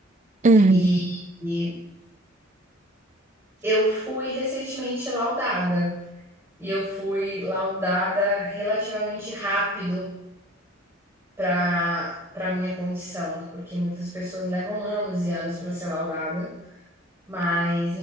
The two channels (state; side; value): normal; both; correlation 0.49